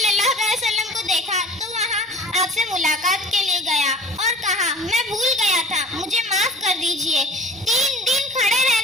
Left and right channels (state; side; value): normal; both; correlation 0.45